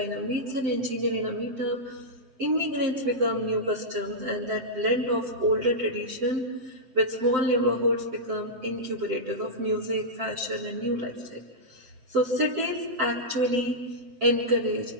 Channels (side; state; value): left; late; 7.7 ms